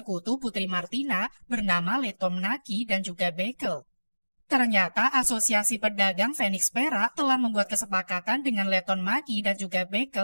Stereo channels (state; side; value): inverted; both; correlation -1.00